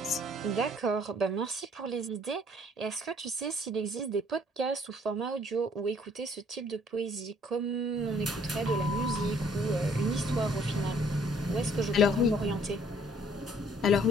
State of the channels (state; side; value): normal; both; correlation 0.60